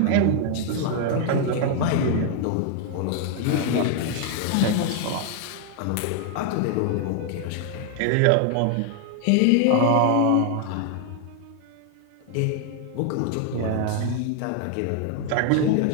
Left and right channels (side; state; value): both; different; correlation 0.00